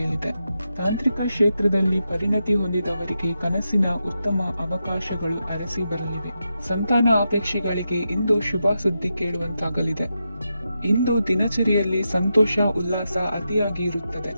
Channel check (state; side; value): inverted; both; correlation -0.87